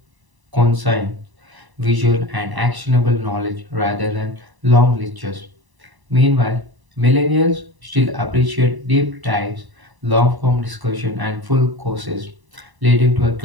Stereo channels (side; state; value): left; late; 1.0 ms